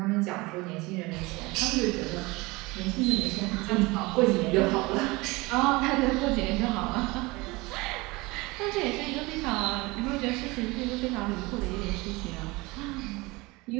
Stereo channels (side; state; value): left; quieter; 23.3 dB